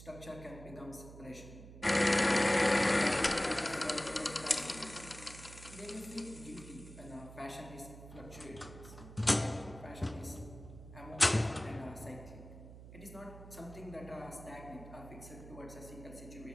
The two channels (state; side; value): noise; right; hum, 15 dB below the sound